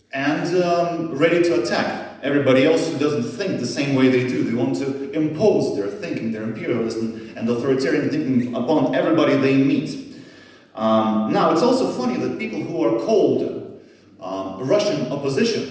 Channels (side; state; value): both; identical; correlation 1.00